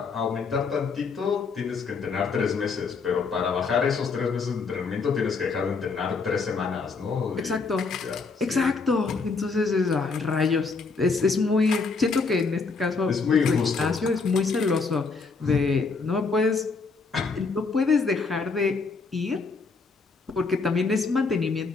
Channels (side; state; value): right; quieter; 4.5 dB